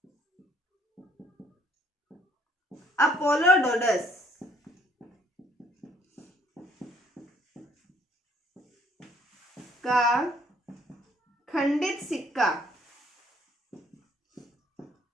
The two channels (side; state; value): both; normal; correlation 0.64